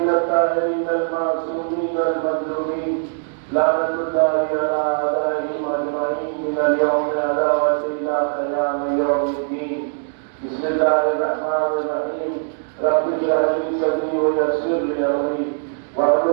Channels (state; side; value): silent; left; digital silence